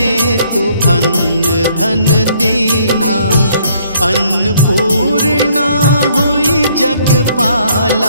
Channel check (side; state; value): both; inverted; correlation -0.65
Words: अन्न धन दीन्हा। अन्नपूर्णा हुई